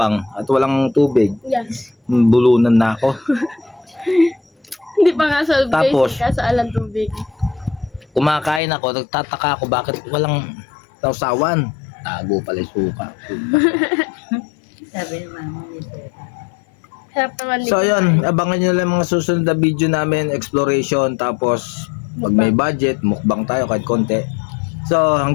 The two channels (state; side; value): drops out; right; at 8.6 s